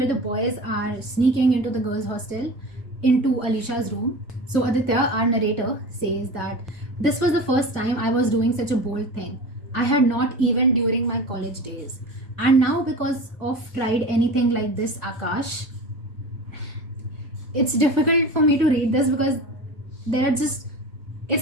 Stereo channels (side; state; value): both; normal; correlation 0.32